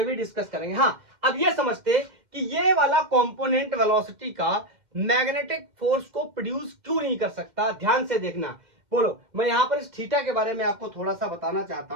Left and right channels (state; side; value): late; left; 2.1 ms